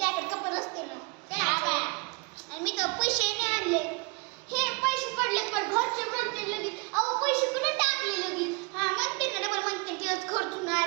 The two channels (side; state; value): left; quieter; 31.0 dB